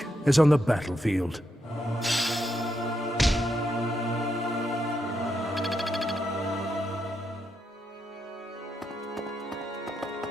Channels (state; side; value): normal; both; correlation 0.81